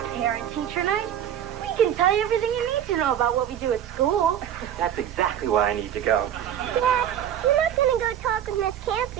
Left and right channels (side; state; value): left; quieter; 10.1 dB